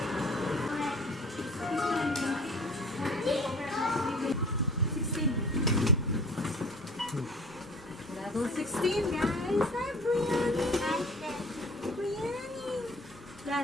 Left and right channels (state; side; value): normal; both; correlation 0.46